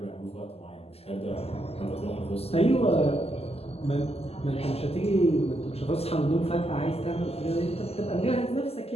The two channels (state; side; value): late; right; 0.29 ms